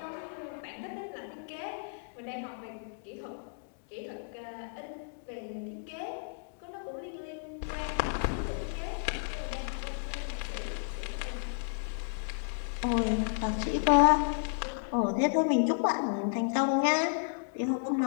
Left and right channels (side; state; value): right; silent; digital silence